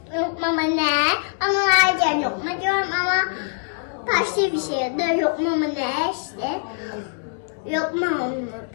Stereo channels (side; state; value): right; silent; digital silence